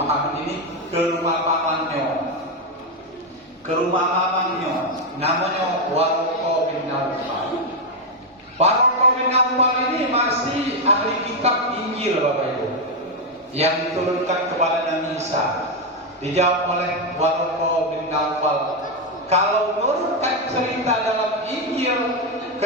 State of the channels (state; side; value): normal; both; correlation 0.05